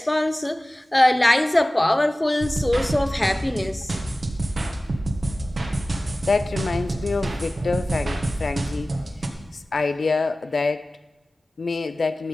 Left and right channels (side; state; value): both; normal; correlation 0.97